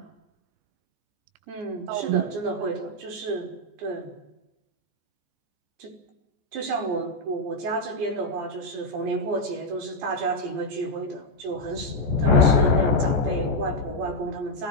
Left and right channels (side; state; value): left; late; 14 ms